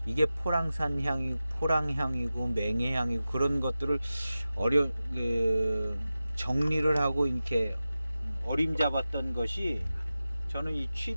이게 포랑산 향이 포랑향이고 맹해향이고 그런 것들을 정리를 하고 이렇게 어림잡았던 것이 저는 이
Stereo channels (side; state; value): both; inverted; correlation -0.94